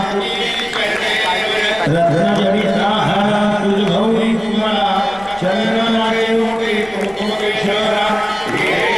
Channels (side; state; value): left; noise; rumble, 24 dB below the sound